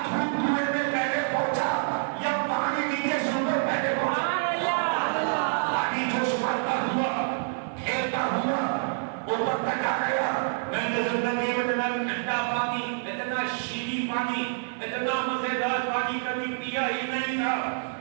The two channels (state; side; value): silent; left; 58 dB below the other